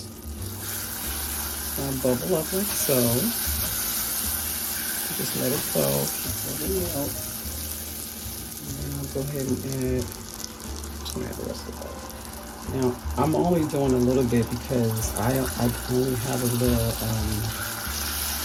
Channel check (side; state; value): both; identical; correlation 1.00